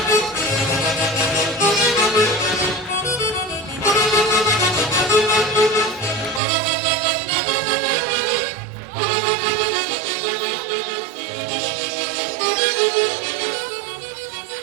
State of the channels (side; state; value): left; drops out; at 6.4 s